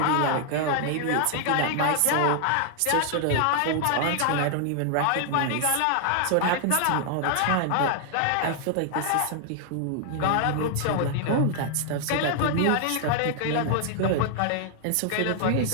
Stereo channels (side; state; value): both; different; correlation 0.00